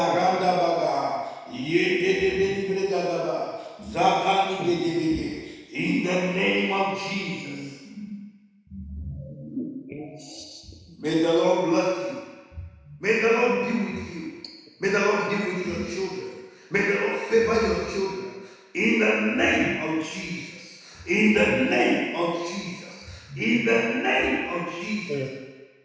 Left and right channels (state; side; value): identical; both; correlation 1.00